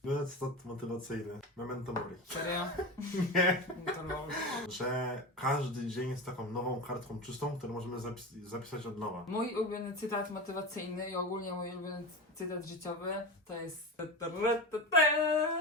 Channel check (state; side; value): normal; both; correlation 0.25